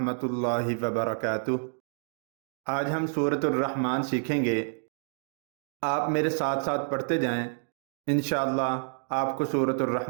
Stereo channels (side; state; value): left; silent; 59 dB below the other